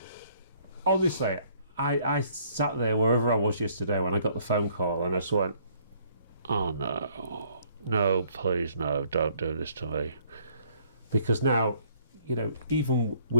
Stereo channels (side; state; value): both; inverted; correlation -0.62